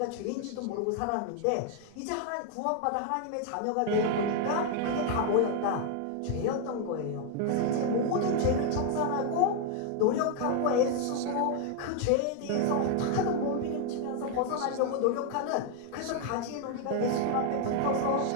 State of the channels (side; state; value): both; different; correlation 0.00